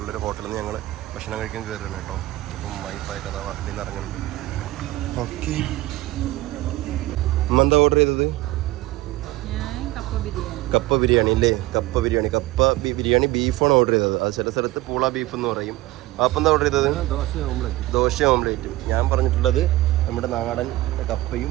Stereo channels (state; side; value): quieter; left; 17.7 dB